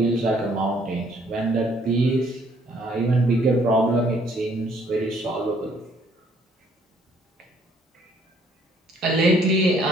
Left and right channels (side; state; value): both; normal; correlation 0.64